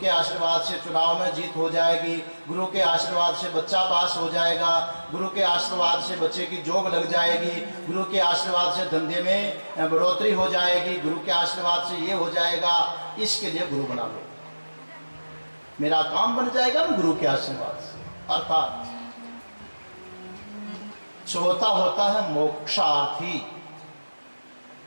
आशीर्वाद से चुनाव में जीत हो जाएगी, गुरु के आशीर्वाद से बच्चा पास हो जाएगा, गुरु के आशीर्वाद से बच्चे की जॉब लग जाएगी, गुरु के आशीर्वाद से धंधे में बढ़ोतरी हो जाएगी, गुरु के आशीर्वाद से ये हो जाएगा। इसके लिए गुरु बना लो, मेरा काम बन जाएगा ना गुरु के आशीर्वाद से। अर्थात चौथा होता है मोक्षार्थी,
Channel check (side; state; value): both; inverted; correlation -1.00